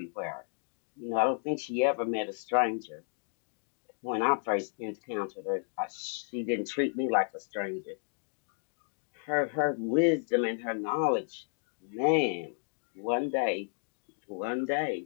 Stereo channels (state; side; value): silent; right; 56 dB below the other